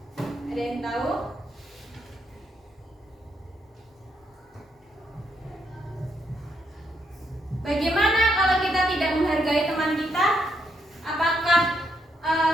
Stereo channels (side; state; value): both; normal; correlation 0.77